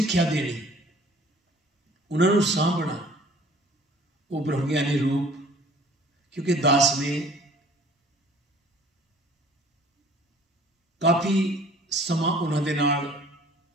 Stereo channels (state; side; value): normal; both; correlation 0.52